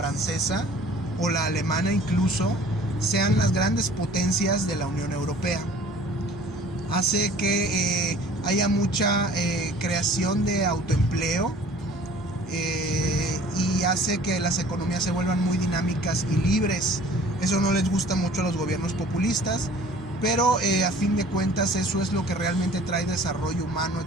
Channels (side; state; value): both; normal; correlation 0.50